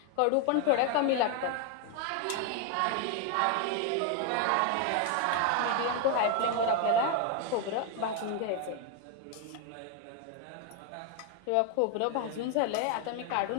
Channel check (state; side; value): different; both; correlation 0.01